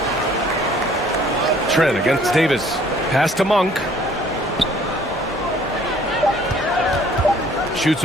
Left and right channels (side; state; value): both; normal; correlation 0.57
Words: Trent against Davis. Pass to Monk. Shoots